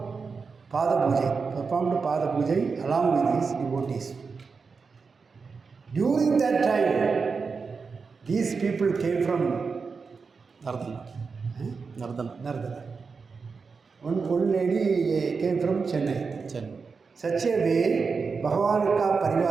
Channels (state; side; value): quieter; left; 5.0 dB